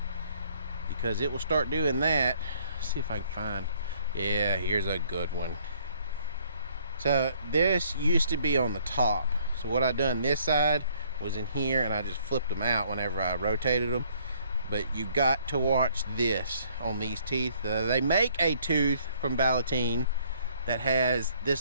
because it will start doing that. Let's see if I can find, yeah, here's a good one. So this used to be on the top. So what I done this side was in here, and I just flipped them out whenever I rotated them. But you got to watch this on these teeth. They make a tooth from Ballotine that has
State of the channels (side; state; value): both; inverted; correlation -0.63